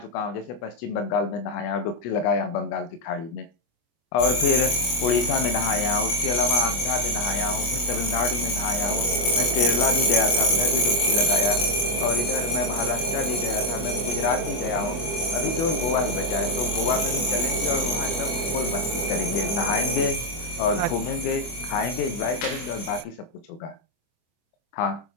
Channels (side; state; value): right; late; 25 ms